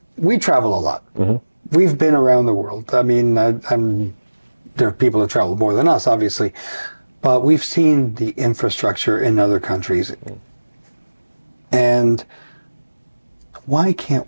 travel a lot. Mm-hmm. We've been around the world. I mean, there are people that travel more than us, obviously, but we've seen the infrastructure in other countries. And why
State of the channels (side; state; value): both; inverted; correlation -1.00